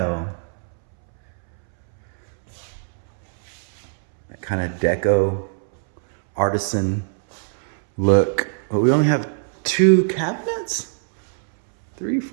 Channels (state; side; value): silent; left; 64 dB below the other